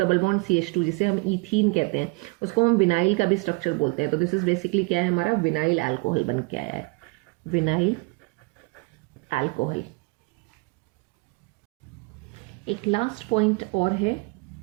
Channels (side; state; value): left; quieter; 29.5 dB